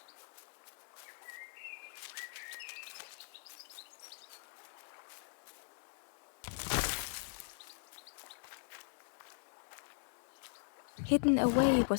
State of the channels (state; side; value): silent; right; digital silence